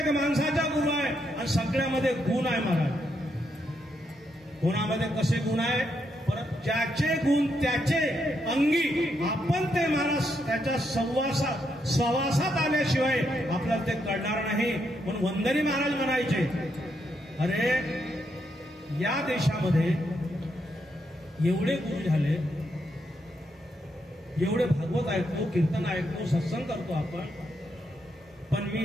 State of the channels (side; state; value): both; normal; correlation 0.79